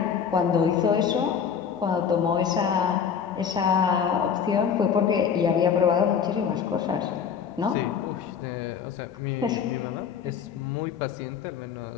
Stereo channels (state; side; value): quieter; right; 7.3 dB